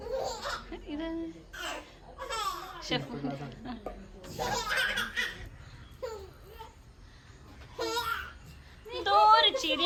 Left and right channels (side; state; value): both; identical; correlation 1.00